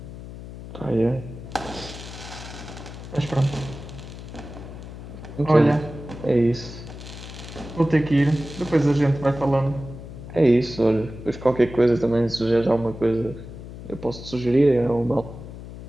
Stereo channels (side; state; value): left; noise; hum, 12 dB below the sound